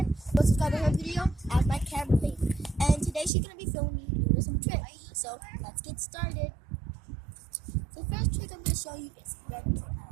Go subscribe to her video as my camera lady. And today she's going to be filming me doing some tricks. So let's get started. The first trick I'm going to show you is red door.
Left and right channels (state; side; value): drops out; left; at 3.3 s